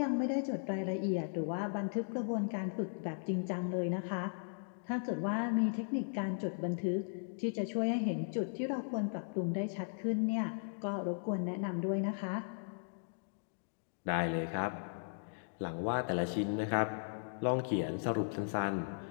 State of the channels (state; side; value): silent; right; digital silence